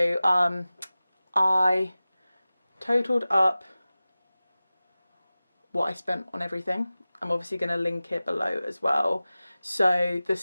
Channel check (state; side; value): inverted; both; correlation -0.97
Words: I totaled up what I spent on everything. I'm obviously going to link it below as well. So the